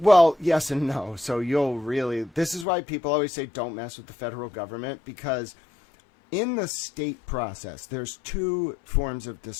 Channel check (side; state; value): right; drops out; at 2.7 s